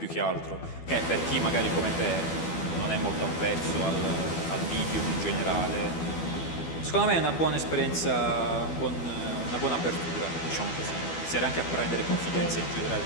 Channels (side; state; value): right; late; 12 ms